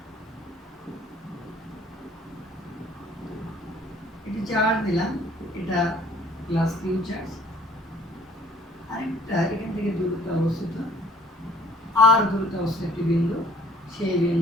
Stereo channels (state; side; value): normal; both; correlation 0.56